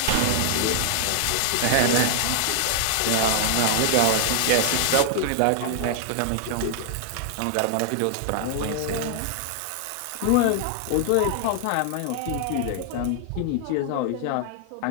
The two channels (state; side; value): different; both; correlation 0.00